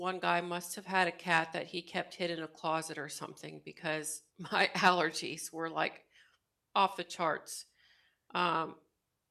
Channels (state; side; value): identical; both; correlation 1.00